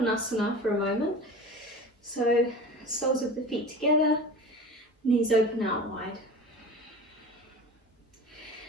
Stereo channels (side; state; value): both; normal; correlation 0.35